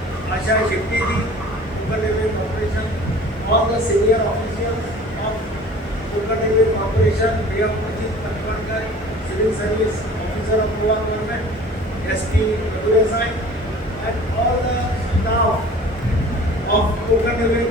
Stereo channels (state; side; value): normal; both; correlation 0.45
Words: Asha Shettiji, Superintendent Corporation. All the senior officials of Superintendent Corporation. We have Ajit Katwankar, Civil Service Officer of Goa Government, SP Madhuresai, and all the staff of Konkan Railway